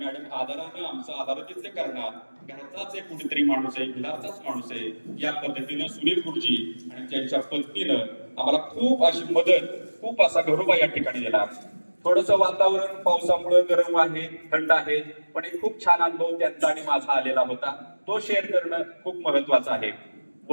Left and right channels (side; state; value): both; inverted; correlation -1.00